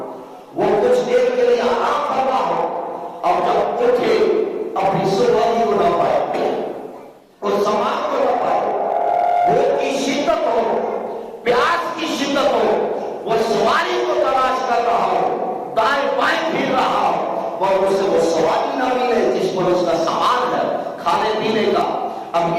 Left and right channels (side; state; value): both; identical; correlation 1.00